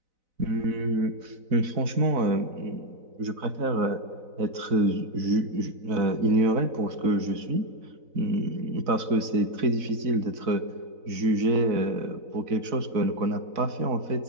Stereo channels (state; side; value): late; left; 4.0 ms